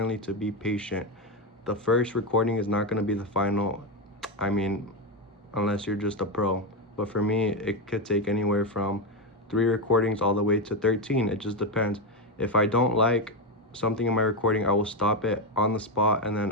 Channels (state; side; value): normal; both; correlation 0.10